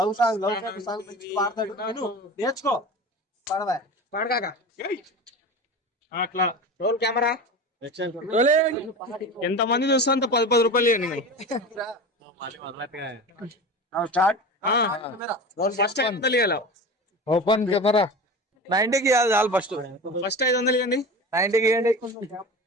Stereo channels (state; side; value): normal; both; correlation 0.31